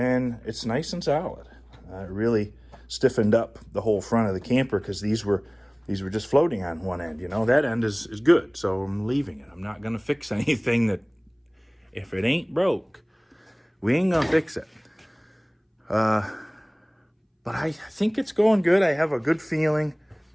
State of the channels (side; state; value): both; identical; correlation 1.00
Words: it's nice and solid. It really stiffened up the whole front of the camper because these were just floating on one end. You know, that end is good, so I'm leaving it. I'm not gonna fix anything that, if it ain't broke, we ain't gonna fix it. But I think it's going good. I have a good feeling